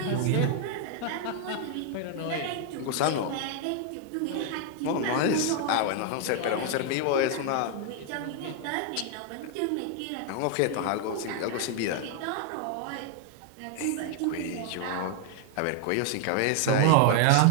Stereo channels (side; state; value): both; different; correlation 0.00